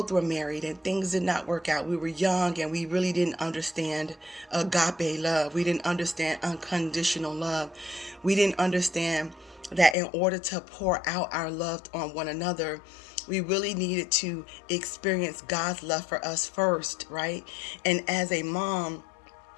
were married and things did not work out. We were young and we really didn't understand agape love. We didn't understand unconditional love. We didn't understand that in order to pour out our love on one another, we really needed to experience God's love for us first, right? And as a mom,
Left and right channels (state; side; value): drops out; right; at 10.0 s